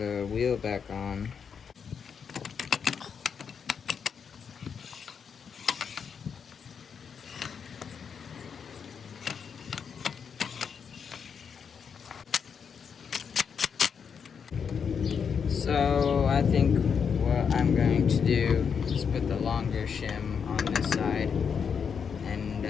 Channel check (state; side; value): quieter; right; 6.7 dB